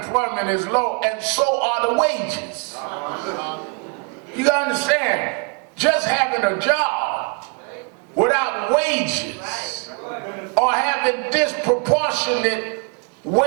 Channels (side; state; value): left; quieter; 34.7 dB